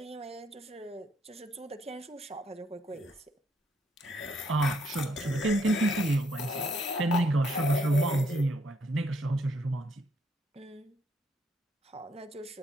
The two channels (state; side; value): normal; both; correlation 0.72